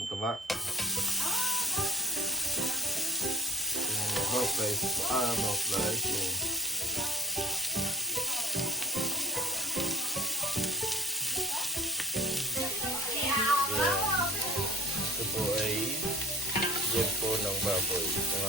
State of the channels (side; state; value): both; normal; correlation 0.44